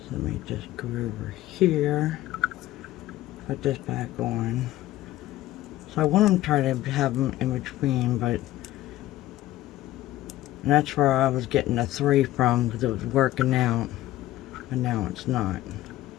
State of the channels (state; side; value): quieter; right; 15.2 dB